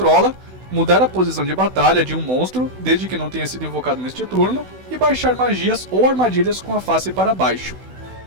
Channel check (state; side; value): late; left; 16 ms